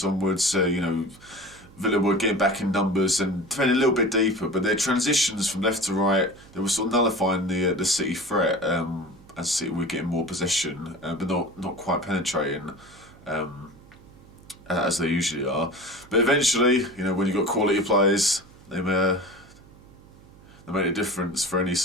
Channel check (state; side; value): noise; right; hum, 23 dB below the sound